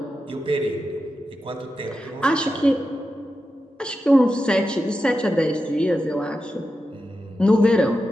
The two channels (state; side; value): normal; both; correlation 0.90